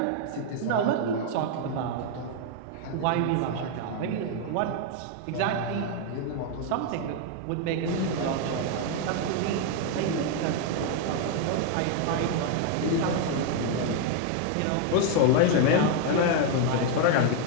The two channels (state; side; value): different; both; correlation 0.01